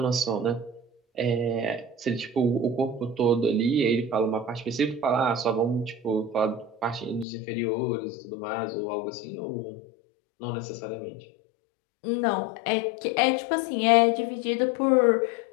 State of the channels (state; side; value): drops out; right; at 7.2 s